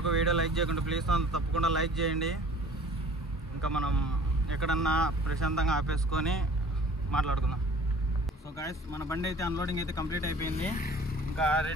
వీడియో లైక్ చేయకుండా ప్లీజ్ తప్పకుండా లైక్ చేయండి. ఇంకా మనం ఎక్కడన్నా ప్రశాంతంగా ఆపేసుకొని మాట్లాడుకుందాం. సో గాయస్ మన బండి అయితే అన్లోడింగ్ అయితే కంప్లీట్ అయిపోయింది. ఇంకా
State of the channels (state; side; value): normal; both; correlation 0.49